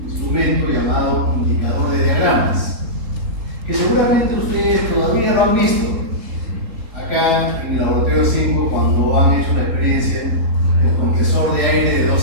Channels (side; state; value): left; late; 3.7 ms